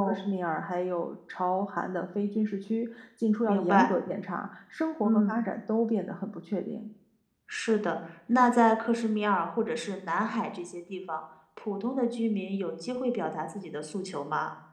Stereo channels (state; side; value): identical; both; correlation 1.00